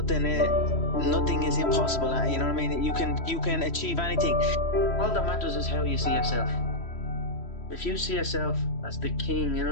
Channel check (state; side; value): late; right; 3.1 ms